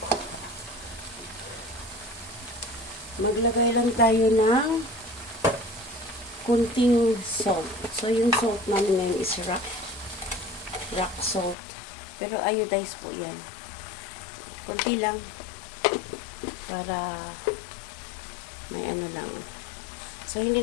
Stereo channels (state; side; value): drops out; right; at 11.6 s